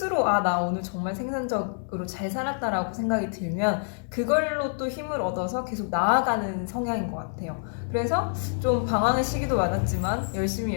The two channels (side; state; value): right; silent; digital silence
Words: 나 오늘 정말 생산적으로 잘 살았다라고 생각이 들면 그걸로 또 힘을 얻어서 계속 나아가는 성향인 것 같아요. 그래서 좀 방황의 시기도 많았지만